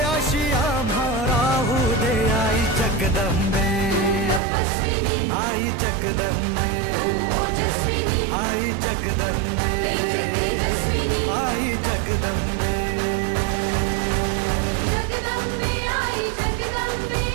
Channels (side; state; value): left; drops out; at 4.4 s